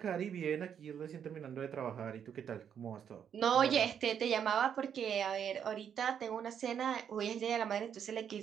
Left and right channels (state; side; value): quieter; left; 8.3 dB